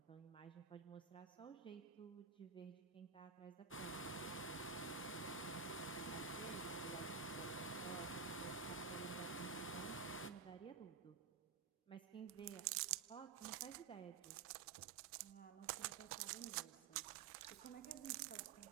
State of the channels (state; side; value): quieter; left; 5.6 dB